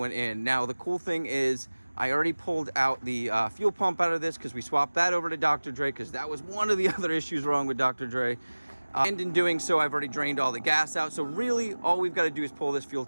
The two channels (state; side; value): inverted; both; correlation -1.00